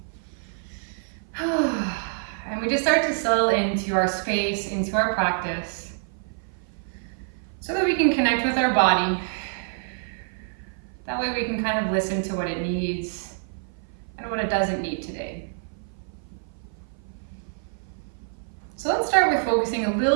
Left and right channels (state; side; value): silent; left; 55 dB below the other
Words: And we just start to settle into our space, into our practice, so that we can connect with our body. That way we can kind of listen to what it needs and what it doesn't need today. So let's start with focusing a